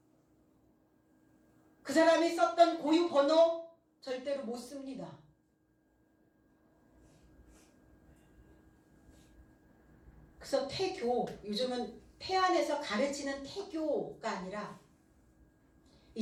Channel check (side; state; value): both; identical; correlation 1.00